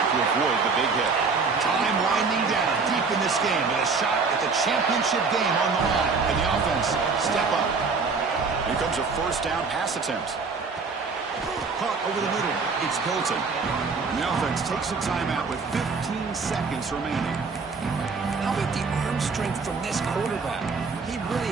to avoid the big hit. Time winding down deep in this game with a shot at the championship game on the line. And the offense step up. Here comes a first down pass attempt. Caught over the middle. It's Hilton. And the offense takes a timeout with 15 seconds remaining. How about the arm strength from this quarterback? He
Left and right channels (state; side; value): quieter; left; 4.7 dB